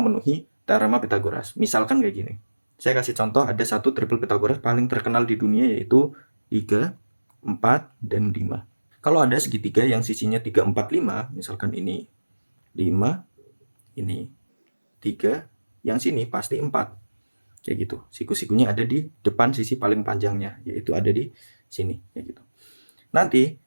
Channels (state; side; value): inverted; both; correlation -1.00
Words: teorema Pitagoras. Misalkan kayak gini. Saya kasih contoh, ada satu triple Pitagoras paling terkenal di dunia, yaitu 3, 4, dan 5. Kalau ada segitiga yang sisinya 3, 4, 5, misalkan ini 5, ini 3, yang sini pasti 4. Kayak gitu. Siku-sikunya ada di depan sisi paling panjangnya, yaitu ada di sini kayak gitu. Nanti